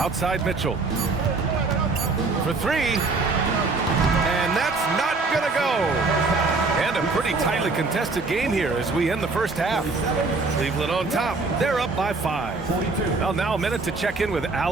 Mitchell. For 3. And that's not gonna go. And a pretty tightly contested game here as we end the first half. Cleveland on top. They're up by 5. Well, now a minute to check in with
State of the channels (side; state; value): left; quieter; 3.8 dB